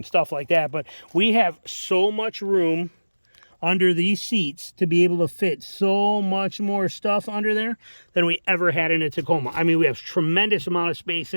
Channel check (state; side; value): inverted; both; correlation -1.00